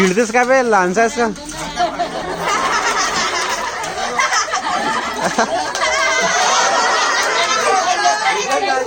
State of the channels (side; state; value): both; identical; correlation 1.00